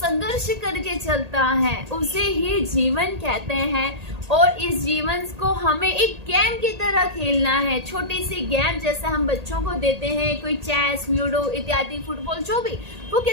करके चलता है उसे ही जीवन कहते हैं। और इस जीवन को हमें एक गेम की तरह खेलना है, छोटी सी गेम जैसे हम बच्चों को देते हैं, कोई चेस, लूडो इत्यादि, फुटबॉल, जो भी, वो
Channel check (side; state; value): left; late; 1.8 ms